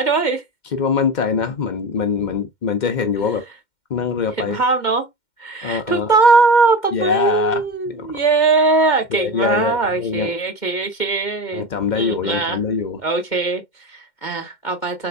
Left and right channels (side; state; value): right; late; 2.1 ms